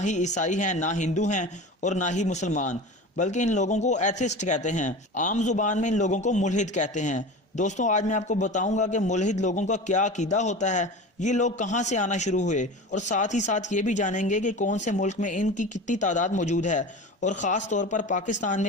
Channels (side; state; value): both; normal; correlation 0.32